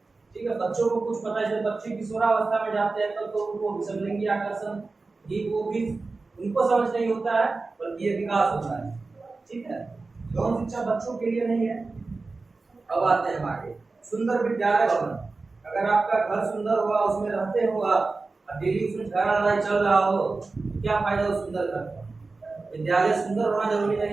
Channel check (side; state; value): left; quieter; 3.8 dB